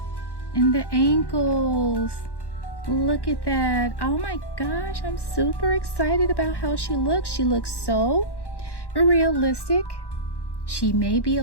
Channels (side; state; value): right; late; 1.1 ms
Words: and the ankles. Look at that. Oh my gosh, I'm super excited about how she looks. She looks so realistic. She may be